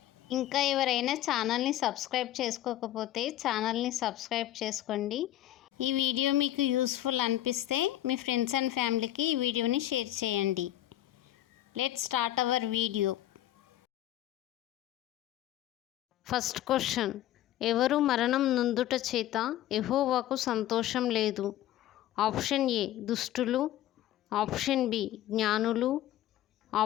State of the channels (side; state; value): right; quieter; 13.4 dB